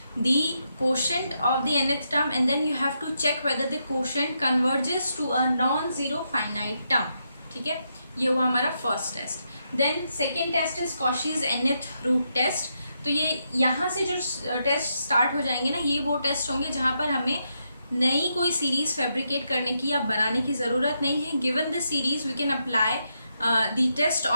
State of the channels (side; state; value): both; inverted; correlation -0.82